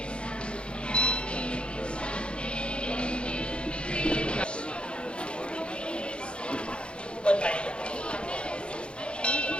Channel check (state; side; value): late; right; 0.056 ms